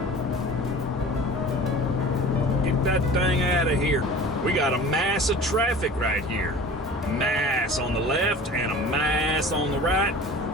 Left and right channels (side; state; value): both; normal; correlation 0.41